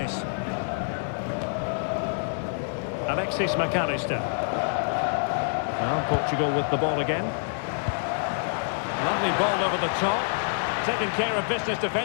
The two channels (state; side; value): silent; right; 60 dB below the other